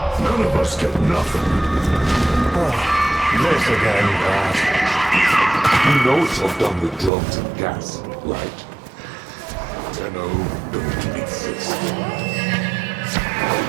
None of us get nothing. This again, Brad. You know I've done the drugs and gas, right? Tenno don't exist.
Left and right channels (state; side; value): drops out; left; at 7.1 s